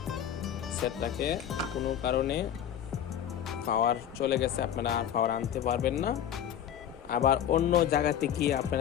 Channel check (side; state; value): right; quieter; 9.8 dB